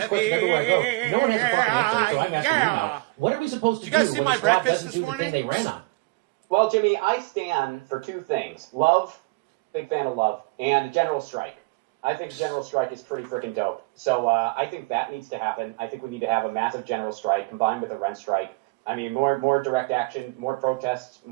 question everywhere I go. No one has a fucking answer, so I'm asking you now. What are we supposed to Did do? you guys see when my the squad breakfast doesn't this do the morning? thing they ran on? Well, Jimmy, I stand for two things. Love, big fan of love, and a general strike. I think the general strike is pretty freaking dope. So I think that needs to happen. I think we need to have a massive general strike combined with a rent strike. I mean, more direct action, more protests,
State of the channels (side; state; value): left; quieter; 25.4 dB